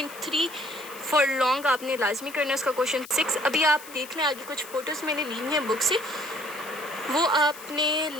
फॉर लॉन्ग आपने लाजमी करना है उसका क्वेश्चन 6। अभी आप देख लें आगे कुछ फ़ोटोज़ मैंने ली हैं बुक से, वो आपने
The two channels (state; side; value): noise; left; hiss, 16 dB below the sound